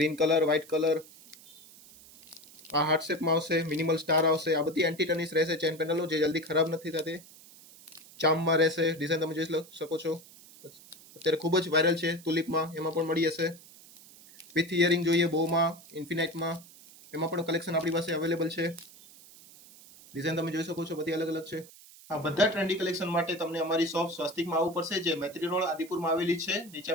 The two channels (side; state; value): right; noise; hiss, 21 dB below the sound